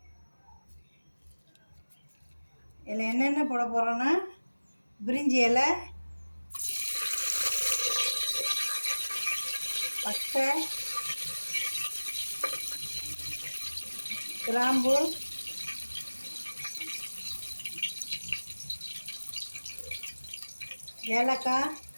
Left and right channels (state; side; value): inverted; both; correlation -1.00